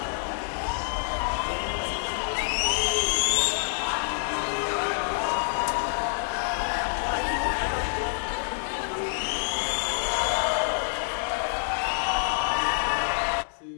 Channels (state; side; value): silent; right; digital silence